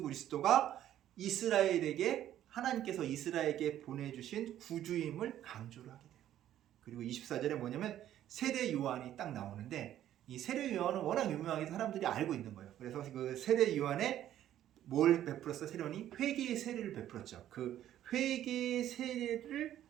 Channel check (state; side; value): quieter; left; 11.9 dB